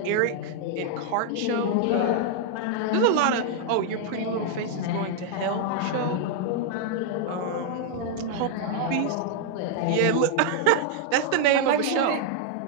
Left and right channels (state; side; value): different; both; correlation 0.00